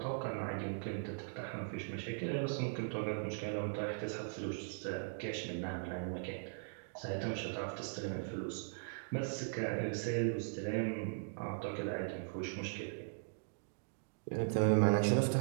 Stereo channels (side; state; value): left; silent; digital silence